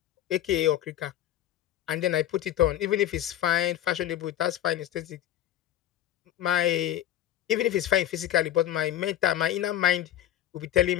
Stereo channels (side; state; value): right; quieter; 12.2 dB